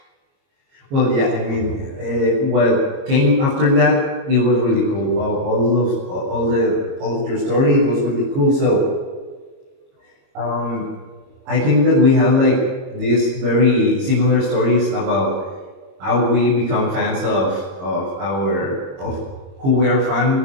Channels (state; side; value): late; left; 22 ms